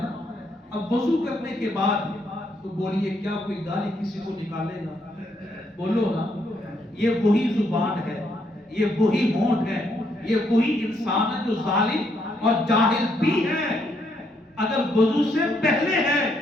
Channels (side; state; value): both; normal; correlation 0.74